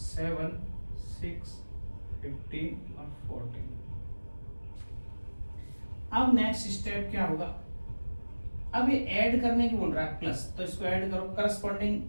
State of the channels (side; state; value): both; inverted; correlation -1.00